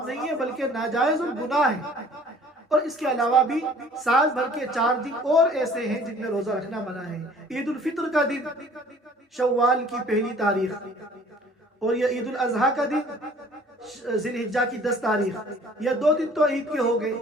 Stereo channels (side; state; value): both; normal; correlation 0.53